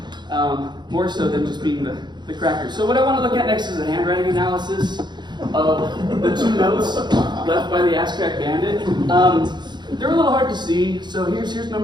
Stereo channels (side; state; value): left; late; 0.21 ms